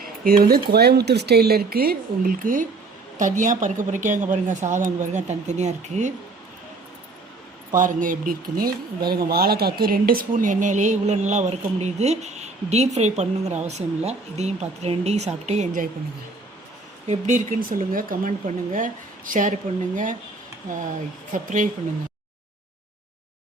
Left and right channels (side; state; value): left; quieter; 3.7 dB